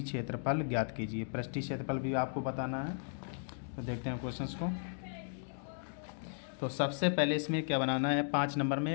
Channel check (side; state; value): right; silent; digital silence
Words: क्षेत्रफल ज्ञात कीजिए। पृष्ठीय क्षेत्रफल भी आपको बताना है, तो देखते हैं क्वेश्चंस को। तो सबसे पहले इसमें क्या बनाना है, 5 नंबर में